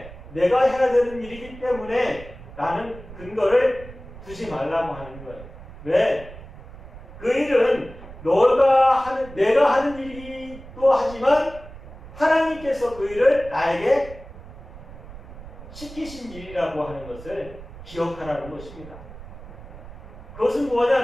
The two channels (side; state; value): right; noise; rumble, 16 dB below the sound